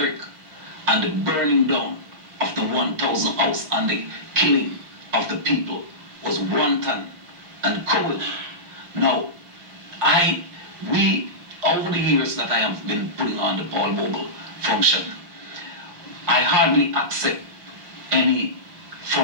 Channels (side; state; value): left; late; 5.7 ms